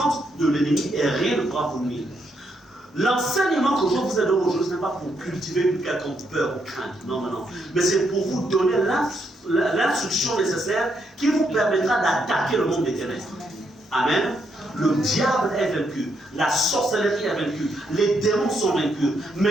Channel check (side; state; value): both; normal; correlation 0.77